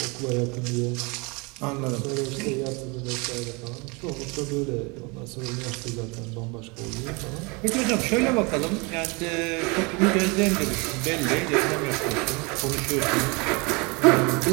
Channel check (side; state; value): left; quieter; 28.9 dB